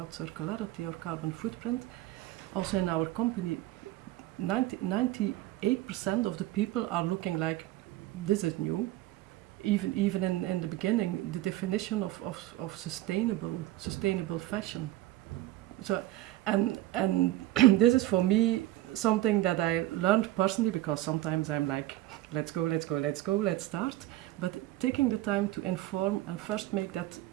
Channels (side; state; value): left; quieter; 15.7 dB